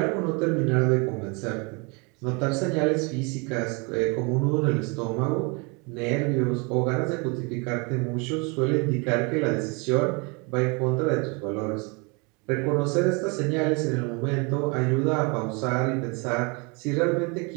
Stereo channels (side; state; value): left; quieter; 30.8 dB